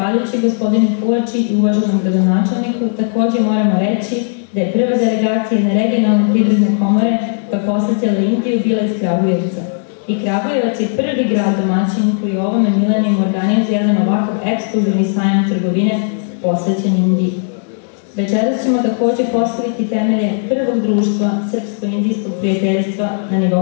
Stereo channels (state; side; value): silent; right; digital silence